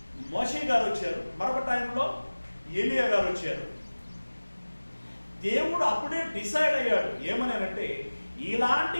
మోషే గారు వచ్చారు, మరొక టైంలో ఏలియా గారు వచ్చారు. దేవుడు అప్పుడే డిసైడ్ అయ్యాడు ఏమనంటే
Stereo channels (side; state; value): both; inverted; correlation -1.00